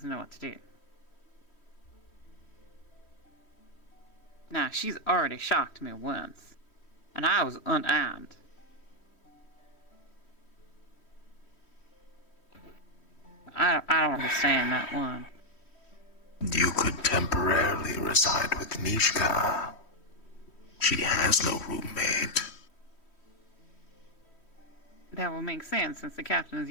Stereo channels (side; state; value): right; late; 3.1 ms